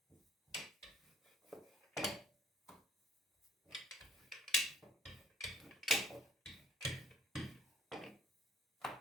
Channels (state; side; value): normal; both; correlation 0.58